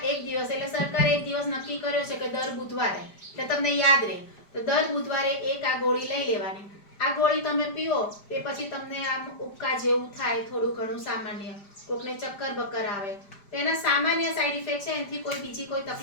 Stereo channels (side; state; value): right; late; 5.0 ms